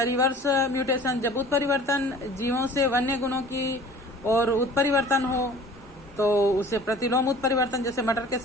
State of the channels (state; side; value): normal; both; correlation 0.46